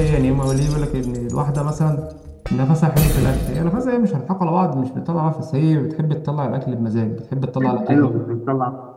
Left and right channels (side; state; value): both; identical; correlation 1.00